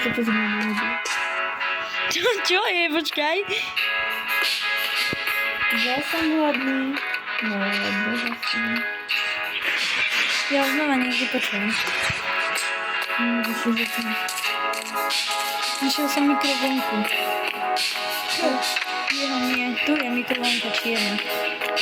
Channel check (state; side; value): identical; both; correlation 1.00